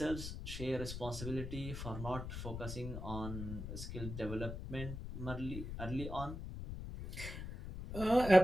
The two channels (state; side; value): noise; left; rumble, 7 dB below the sound